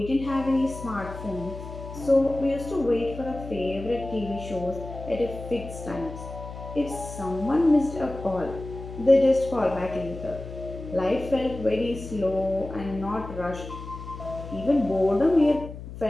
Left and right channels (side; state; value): left; noise; hum, 11 dB below the sound